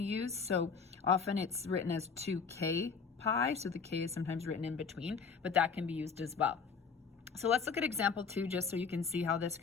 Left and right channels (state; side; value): quieter; right; 5.5 dB